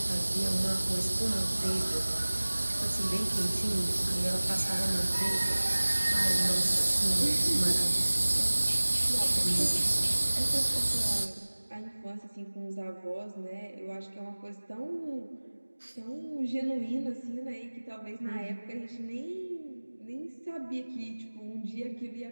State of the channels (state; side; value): inverted; both; correlation -1.00